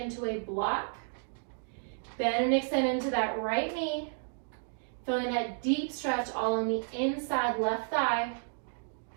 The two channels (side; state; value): left; silent; digital silence